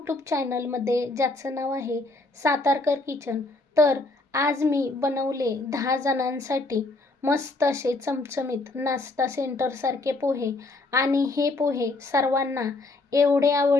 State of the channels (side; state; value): right; quieter; 3.2 dB